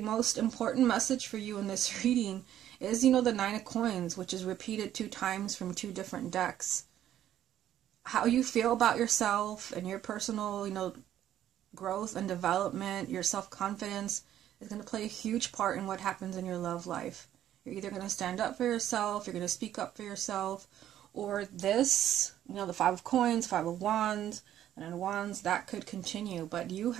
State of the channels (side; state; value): left; quieter; 11.6 dB